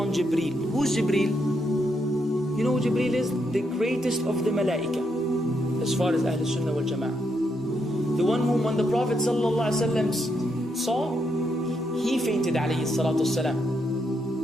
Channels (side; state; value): both; normal; correlation 0.79